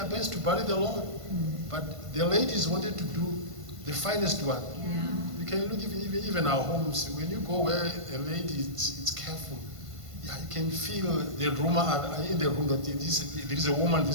best to bury the Lord. But the ladies wanted to do the finest one. Yeah. You can look even our homes. When you go where a lady is careful, yeah, you can feel the rumor in the room that there is a woman in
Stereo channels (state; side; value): late; left; 1.5 ms